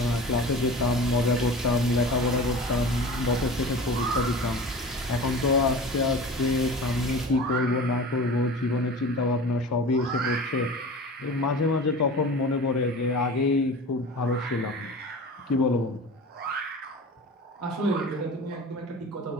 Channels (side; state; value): both; normal; correlation 0.36